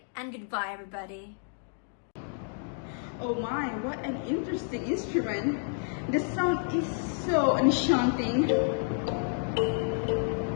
and goodbye everybody. Oh my, what an interesting instrument. The sound is so enchanting.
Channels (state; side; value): silent; right; 58 dB below the other